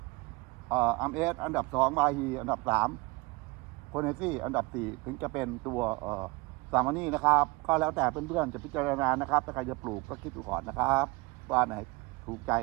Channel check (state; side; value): quieter; left; 24.4 dB